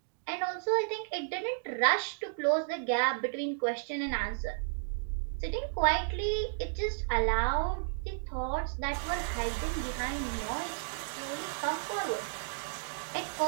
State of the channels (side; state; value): left; silent; digital silence